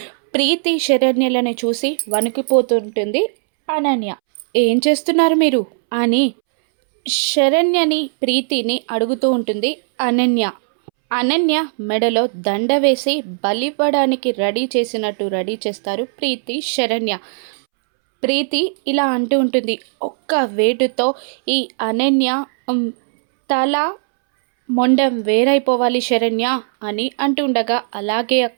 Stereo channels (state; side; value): silent; left; 68 dB below the other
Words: ప్రీతి శరణ్యలను చూసి వణికిపోతుంటుంది అనన్య. ఏం చేస్తున్నారు మీరు అని శరణ్యని ప్రీతిని అడుగుతూ ఉంటుంది అనన్య. అనన్య మెడలో దండ వేసి బలివ్వడానికి రెడీ చేసినట్టు రెడీ చేస్తారు ప్రీతి శరణ్య. ప్రీతి ఇలా అంటూ ఉంటుంది, ఒక్క వేటుతో ఈ అనన్య తల మొండం వేరైపోవాలి శరణ్య అని అంటుండగా అలాగే